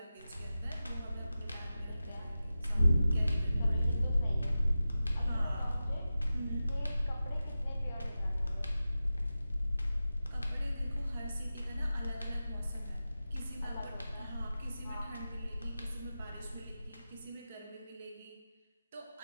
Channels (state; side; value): inverted; both; correlation -0.93